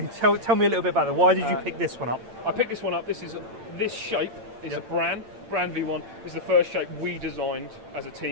you tell me a little bit about it? Why did you pick this one up? I picked this one up. This shape is a brand V1. It's the first shape we designed as a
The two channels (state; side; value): late; left; 8.8 ms